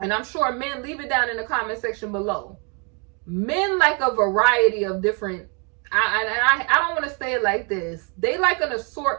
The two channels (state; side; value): quieter; left; 35.3 dB